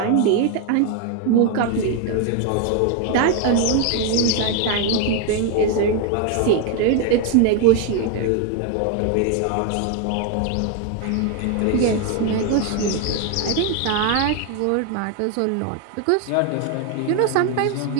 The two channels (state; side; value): different; both; correlation 0.01